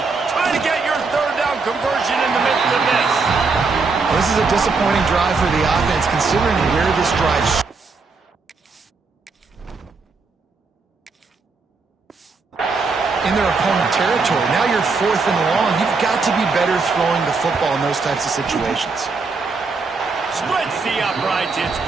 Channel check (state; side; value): quieter; left; 4.3 dB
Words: Trying to get your third down conversion in the midst of this. This is a disappointing drive for the offense, considering where this drive in their opponent territory. Now you're 4th and long. You've got to be better throwing the football in those types of situations. Splits the uprights. It's